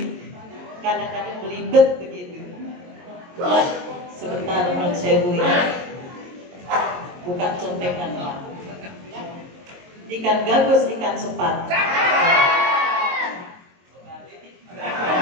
kadang-kadang belibet begitu. Sebentar menurut sewu ya, buka contekan Pak. Ikan gabus, ikan sepat.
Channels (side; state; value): left; late; 22 ms